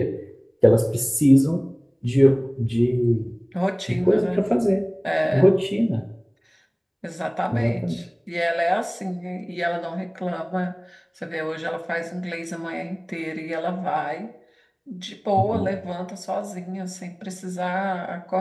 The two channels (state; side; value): identical; both; correlation 1.00